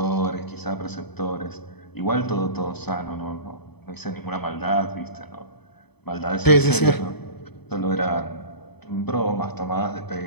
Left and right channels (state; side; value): late; right; 0.98 ms